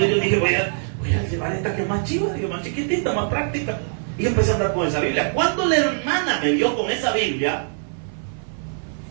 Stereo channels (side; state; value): left; silent; 57 dB below the other